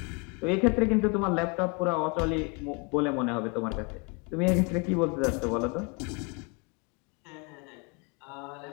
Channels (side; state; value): right; quieter; 31.6 dB